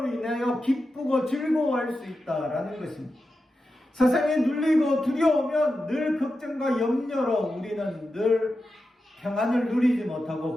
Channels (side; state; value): both; normal; correlation 0.90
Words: 인하여 기쁘고 즐거워할 수 있다라는 것입니다. 세상에 눌리고 두려우면 늘 걱정과 염려로 우리는 늘 평안을 누리지 못하고